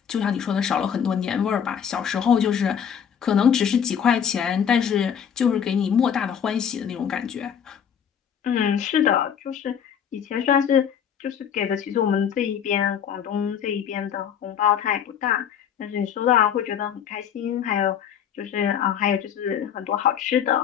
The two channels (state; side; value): quieter; right; 8.3 dB